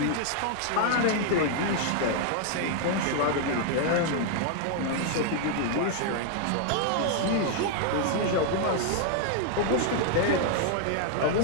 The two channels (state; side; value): different; both; correlation 0.00